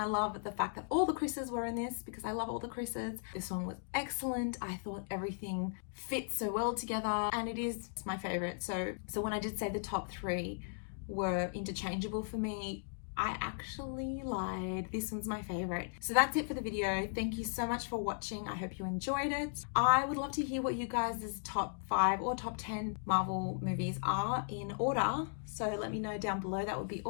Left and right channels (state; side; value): silent; right; digital silence